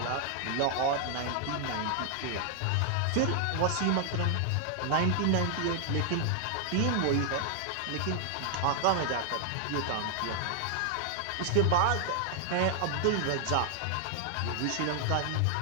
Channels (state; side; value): different; both; correlation 0.00